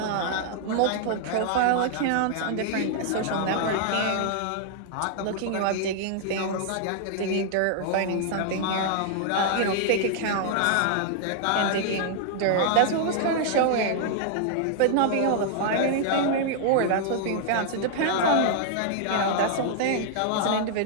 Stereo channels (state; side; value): different; both; correlation -0.01